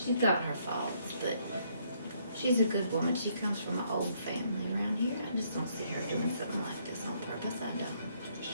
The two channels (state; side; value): inverted; both; correlation -0.69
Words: got her faults, but she's a good woman. She comes from an old family around here. I just don't see her doing something like this on purpose. I don't.